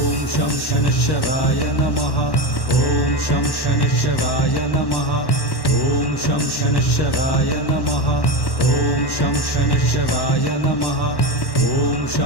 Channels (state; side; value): late; right; 1.1 ms